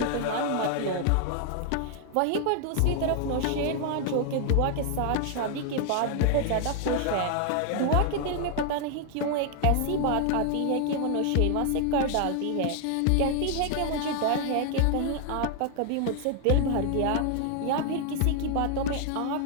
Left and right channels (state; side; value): different; both; correlation 0.00